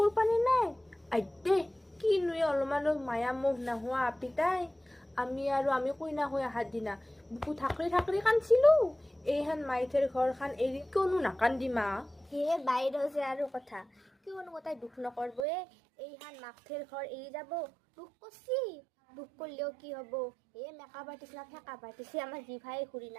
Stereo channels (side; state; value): left; drops out; at 15.5 s